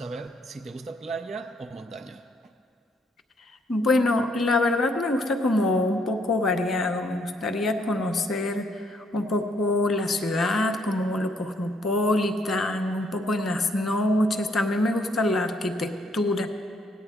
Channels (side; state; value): both; normal; correlation 0.70